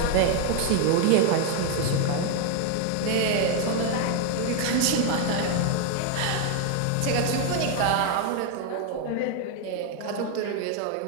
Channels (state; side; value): different; both; correlation 0.01